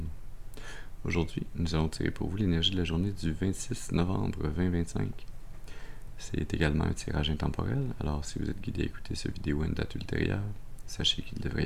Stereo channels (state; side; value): identical; both; correlation 1.00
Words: Aujourd'hui, nous allons tirer pour vous l'énergie de la journée du 26 novembre 2025. C'est également un tirage intemporel, alors si vous êtes guidé à écouter cette vidéo à une date ultérieure, sachez qu'il devrait